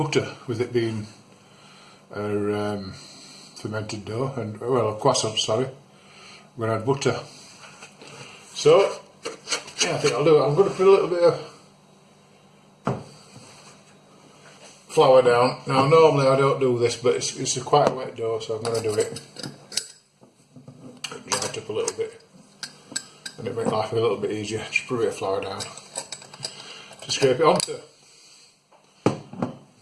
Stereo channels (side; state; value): both; identical; correlation 1.00